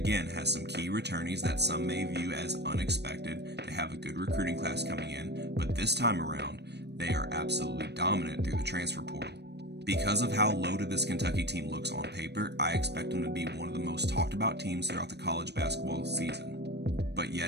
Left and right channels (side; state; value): left; late; 0.49 ms